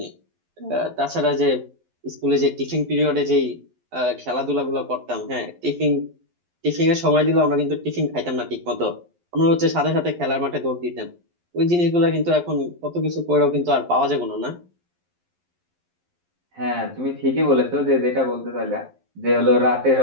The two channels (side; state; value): left; late; 11 ms